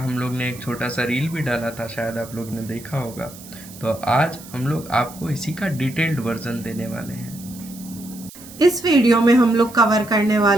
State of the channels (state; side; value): noise; right; hiss, 18 dB below the sound